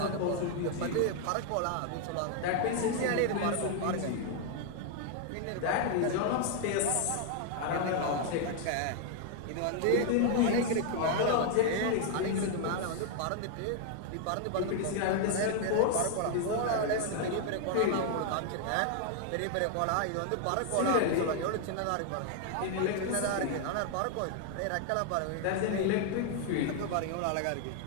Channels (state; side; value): different; both; correlation 0.00